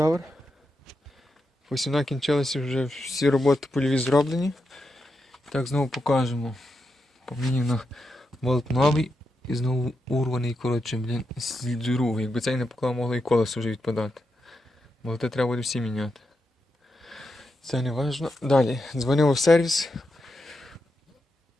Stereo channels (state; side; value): normal; both; correlation 0.86